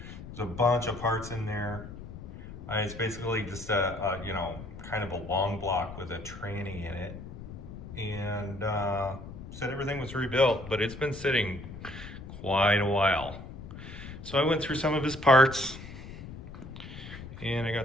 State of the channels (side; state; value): left; noise; rumble, 12 dB below the sound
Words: There's a bunch of parts in there. It's basically just a kind of a long block with a tranny in it. And said everything was rebuilt, but it's been sitting quite a while. So I went through some of his parts, and I